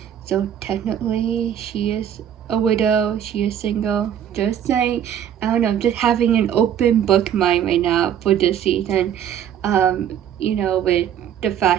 so technically she is a widow, she is single. Just saying, I don't know, I'm just having an open book mind right now for this season. You know, with the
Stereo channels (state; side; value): quieter; left; 9.6 dB